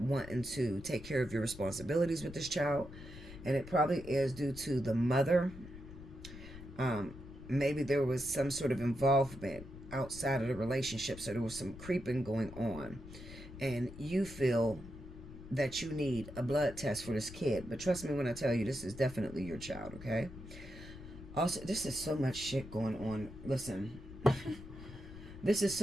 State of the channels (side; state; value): left; noise; rumble, 14 dB below the sound